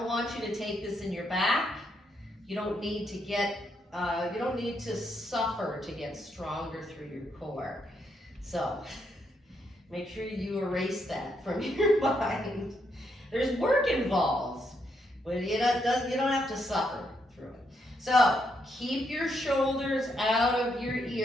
want you to take this in your back. You don't need to get, you don't need to suffer to get stronger through your core. So make sure you erase that from your mind. There's work involved, but you don't have to suffer through it. So keep your shoulders out of your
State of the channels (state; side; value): normal; both; correlation 0.77